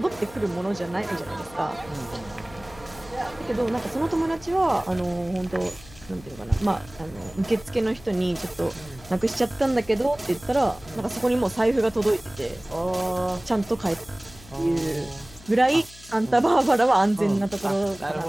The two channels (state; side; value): noise; left; hum, 21 dB below the sound